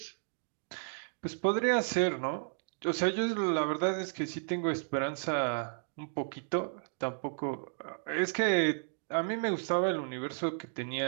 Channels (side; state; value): left; silent; digital silence